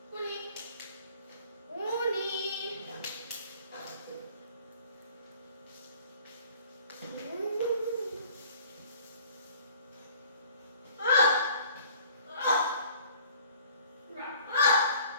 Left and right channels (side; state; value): both; inverted; correlation -0.52